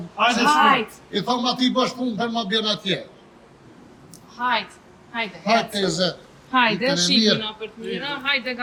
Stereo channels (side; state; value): both; identical; correlation 1.00